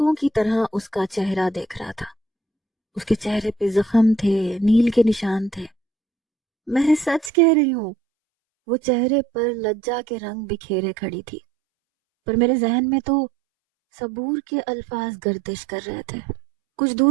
کی طرح اس کا چہرہ دیکھ رہا تھا۔ اس کے چہرے پہ زخم تھے، نیل کے نشان تھے۔ میں سچ کہہ رہی ہوں، وہ چہرے پر لجا کے رنگ بکھیرے کھڑی تھی، پر میرے ذہن میں تو صبور کے الفاظ گردش کر رہے تھے۔ کچھ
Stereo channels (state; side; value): drops out; left; at 7.3 s